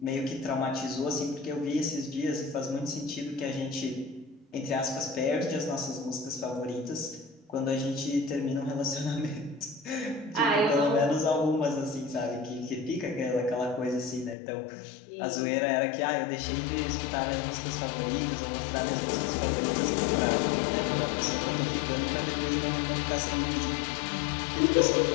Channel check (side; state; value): right; drops out; at 14.4 s